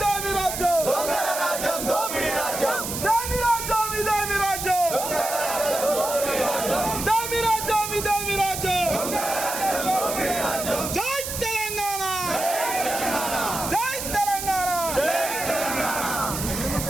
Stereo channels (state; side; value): noise; right; hiss, 5 dB below the sound